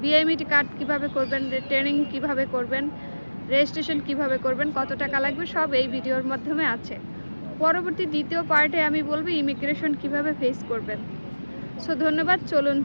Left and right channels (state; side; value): inverted; both; correlation -1.00